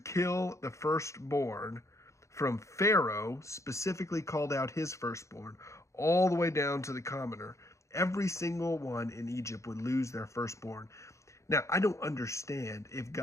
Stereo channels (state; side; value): late; right; 0.14 ms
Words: kill the firstborn from Pharaoh, specifically called out his firstborn, all the way down to the commoner. Every single one in Egypt would lose their firstborn. Now, I don't understand if